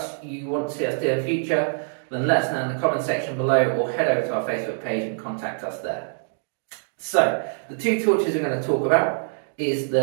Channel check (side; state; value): left; silent; digital silence